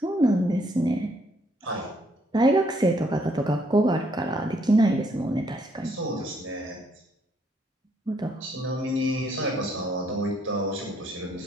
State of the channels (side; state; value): both; normal; correlation 0.69